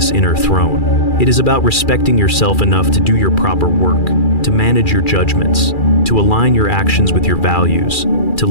inner throne. It is about respecting yourself enough to do your proper work, to manage your judgments, to align your actions with your values, to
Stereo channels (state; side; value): late; right; 2.4 ms